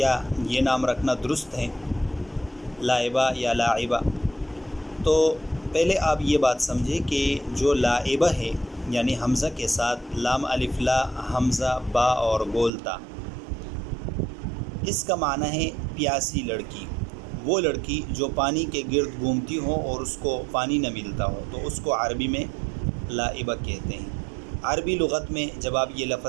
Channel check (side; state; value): left; drops out; at 12.7 s